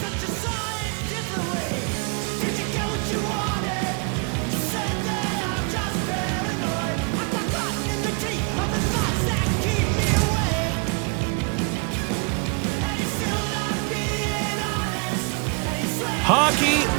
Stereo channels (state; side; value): quieter; left; 34.6 dB